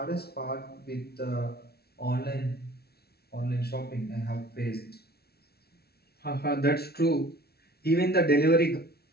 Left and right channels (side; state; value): right; late; 0.46 ms